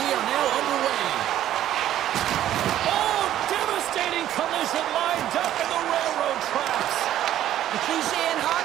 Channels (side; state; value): left; quieter; 12.2 dB